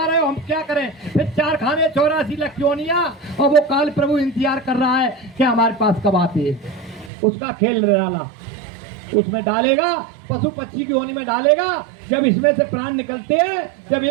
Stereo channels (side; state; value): left; drops out; at 7.1 s